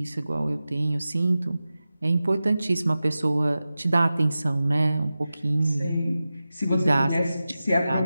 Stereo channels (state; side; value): inverted; both; correlation -0.95